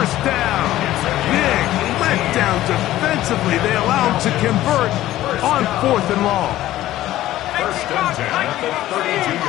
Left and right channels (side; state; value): right; quieter; 14.6 dB